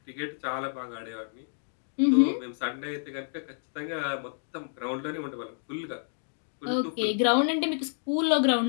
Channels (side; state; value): right; silent; digital silence